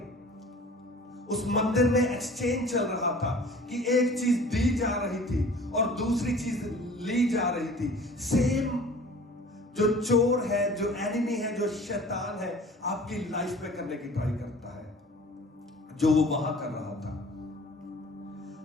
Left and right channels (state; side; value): normal; both; correlation 0.46